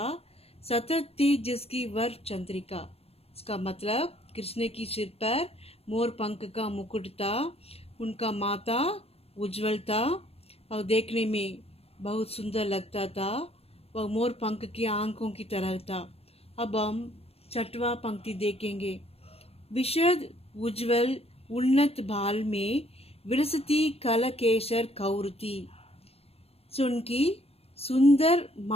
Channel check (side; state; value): right; late; 0.29 ms